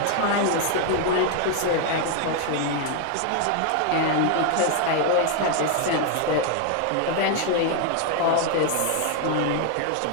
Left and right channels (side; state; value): both; different; correlation 0.01